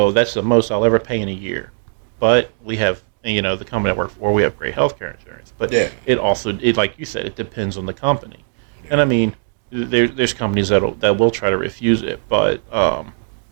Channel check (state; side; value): silent; left; digital silence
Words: that's the most I'll ever pay in a year. But we have, the company I work for, we have great health care insurance. But it also, like you said, it depends on the company. Yeah. And I mean, there's companies that will try to refuse it, but